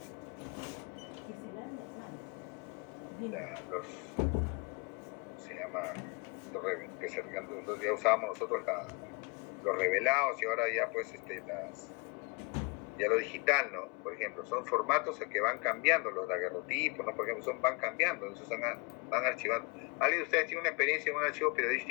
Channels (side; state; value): right; quieter; 29.7 dB